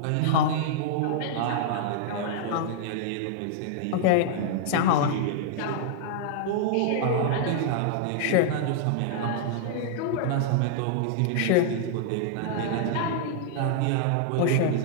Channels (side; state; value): both; different; correlation -0.01